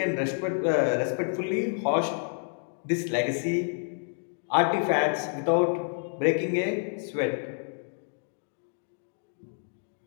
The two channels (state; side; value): silent; right; 59 dB below the other